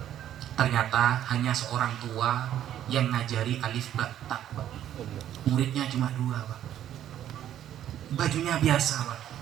Ternyata hanya seorang tua yang ngajari alif ba ta, Pak. Muridnya cuma 2, Pak. Bajunya biasa, Pak.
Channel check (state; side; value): quieter; left; 11.2 dB